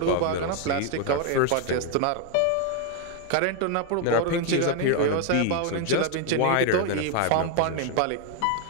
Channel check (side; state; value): both; different; correlation 0.01